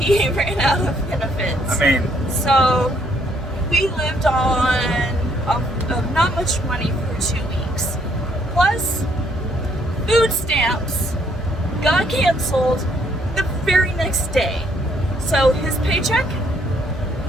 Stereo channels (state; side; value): normal; both; correlation 0.68